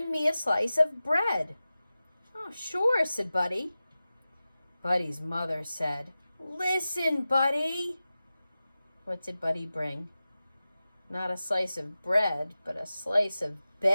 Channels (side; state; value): both; inverted; correlation -0.95